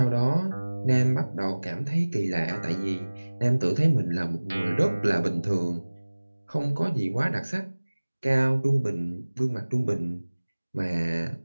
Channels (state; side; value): inverted; both; correlation -1.00